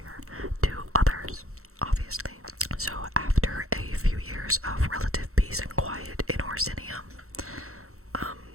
to others, obviously. So after a few years of relative peace and quiet in Orsinium,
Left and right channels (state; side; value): late; left; 0.63 ms